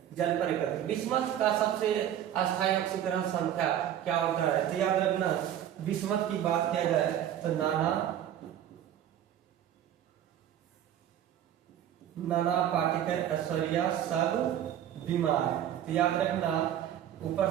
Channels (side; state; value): left; quieter; 10.8 dB